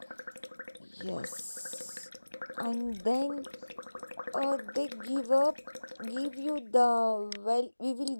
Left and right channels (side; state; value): both; inverted; correlation -1.00